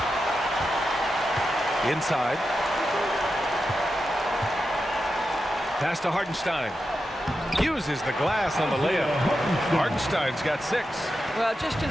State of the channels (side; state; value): both; normal; correlation 0.89